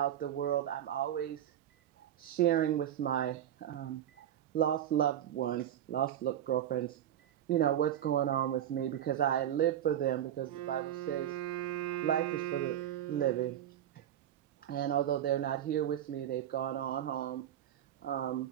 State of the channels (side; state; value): left; quieter; 10.9 dB